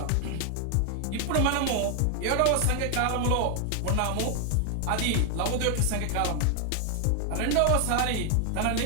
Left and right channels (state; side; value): different; both; correlation 0.00